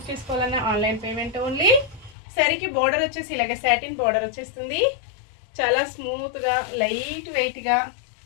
చేసుకోవాలన్నా ఆన్లైన్ పేమెంట్ ఓన్లీ. శారీకి బోర్డర్ వచ్చేసి ఇలాగ సాటిన్ బోర్డర్ వచ్చేస్తుంది. చాలా స్మూత్గా లైట్ వెయిట్గా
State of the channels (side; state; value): right; drops out; at 2.1 s